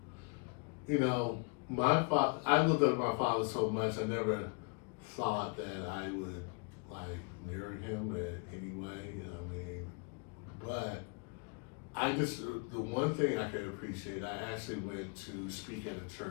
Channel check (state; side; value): quieter; right; 35.3 dB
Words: you know, I looked up my father so much. I never thought that I would like near him in any way. I mean, but I just, the one thing I could appreciate, I actually went to speak at a